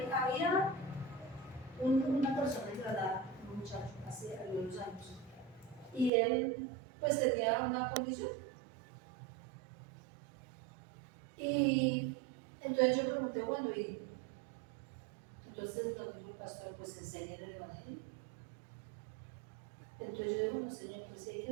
había una persona en Granada, un muchacho, hace algunos años, y él pues tenía una condición. Y entonces yo pregunté, bueno, y entonces nos dijo el pastor, pues enséñale el Evangelio. Entonces yo digo, bueno, Señor, pues si hay que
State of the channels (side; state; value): left; drops out; at 6.1 s